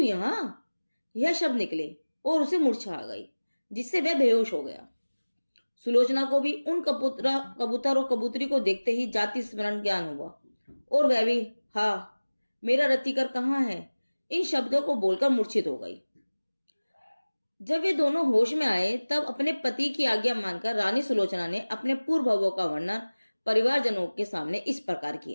यह शब्द निकले और उसे मूर्छा आ गई, जिससे वह बेहोश हो गया। सुलोचना को भी उन कबूतर और कबूतरी को देखते ही जाति स्मरण ज्ञान हुआ और वह भी हाँ मेरा रतिकर कहाँ है, इन शब्दों को बोलकर मूर्छित हो गई। जब वे दोनों होश में आए तब अपने पति की आज्ञा मानकर रानी सुलोचना ने अपने पूर्व भवों का वर्णन परिवारजनों के सामने इस प्रकार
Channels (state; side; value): inverted; both; correlation -1.00